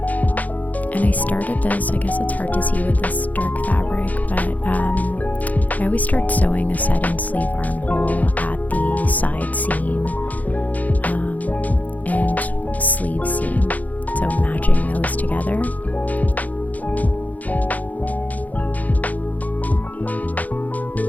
And I started this, I guess it's hard to see with this dark fabric, but I always start sewing a set-in sleeve armhole at the side seam and sleeve seam, so matching those together.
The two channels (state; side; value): late; right; 0.078 ms